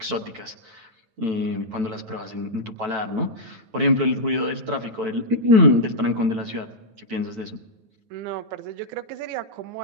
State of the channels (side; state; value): left; late; 9.1 ms